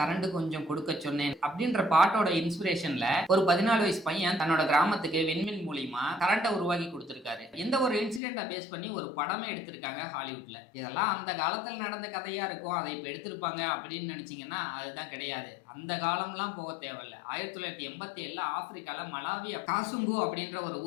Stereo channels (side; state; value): right; drops out; at 8.2 s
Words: கொஞ்சம் கொடுக்கச் சொன்னேன் அப்படின்ற பாட்டோட இன்ஸ்பிரேஷன்ல ஒரு 14 வயசு பையன் தன்னோட கிராமத்துக்கு விண்மின் மூலியமா கரண்ட்டை உருவாக்கி கொடுத்திருக்காரு. இந்த ஒரு இன்சிடென்ட்டை பேஸ் பண்ணி ஒரு படமே எடுத்திருக்காங்க ஹாலிவுட்ல. இதெல்லாம் அந்த காலத்துல நடந்த கதையா இருக்கும், அதை இப்ப எடுத்திருப்பாங்க அப்படின்னு நினைச்சீங்கன்னா அதுதான் கிடையாது. அந்த காலம்லாம் போக தேவையில்ல. 1987 ஆப்பிரிக்கால மலாவி காசுங்கு அப்படின்ற ஒரு